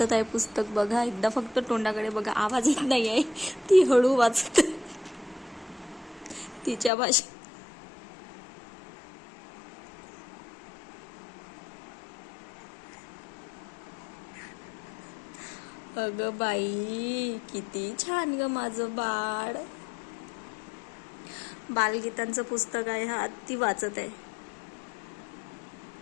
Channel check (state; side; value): drops out; right; at 6.9 s